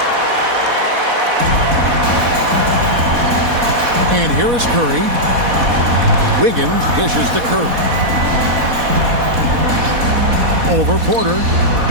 And here is Curry. Wiggins dishes to Curry. Over Porter.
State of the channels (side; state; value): left; late; 4.1 ms